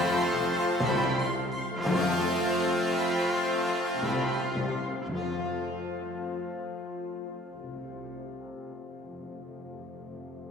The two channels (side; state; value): both; normal; correlation 0.58